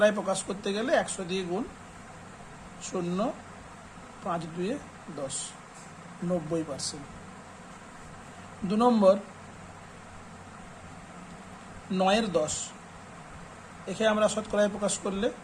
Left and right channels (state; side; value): identical; both; correlation 1.00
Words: প্রকাশ করতে গেলে 100 দিয়ে গুণ, 0 5 2 10, 90%। 2 নম্বর 9-এর 10, একে আমরা শতকরায় প্রকাশ করলে